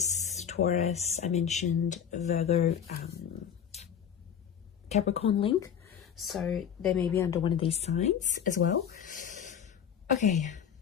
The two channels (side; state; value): right; quieter; 8.3 dB